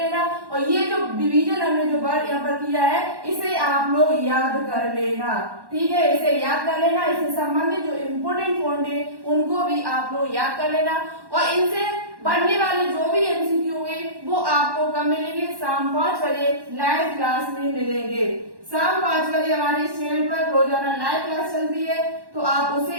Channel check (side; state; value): left; late; 1.1 ms